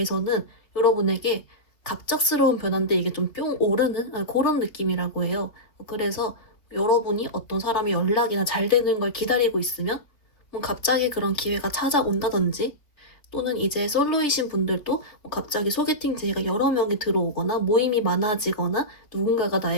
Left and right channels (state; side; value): late; right; 3.3 ms